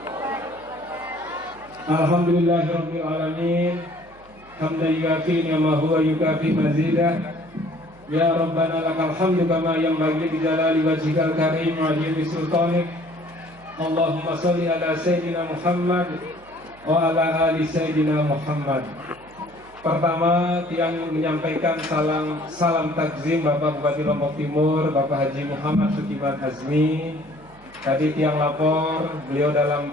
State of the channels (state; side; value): noise; right; hum, 26 dB below the sound